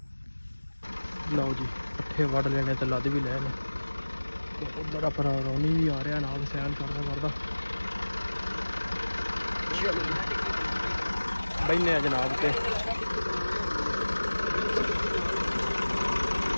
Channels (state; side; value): inverted; both; correlation -1.00